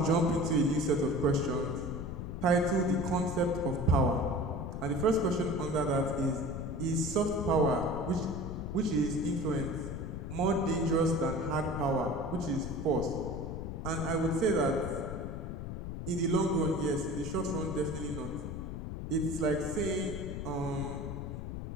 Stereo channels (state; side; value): noise; left; rumble, 6 dB below the sound